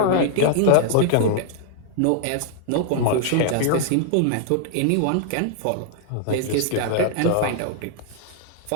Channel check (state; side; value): different; both; correlation 0.00